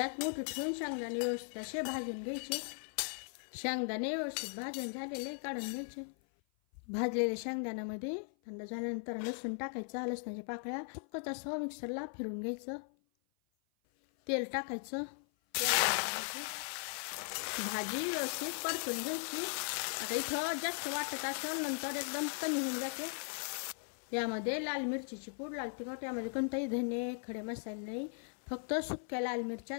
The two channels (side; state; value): right; silent; 52 dB below the other